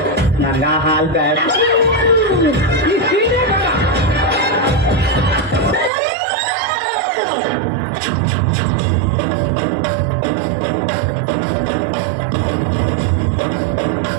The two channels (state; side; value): drops out; left; at 5.9 s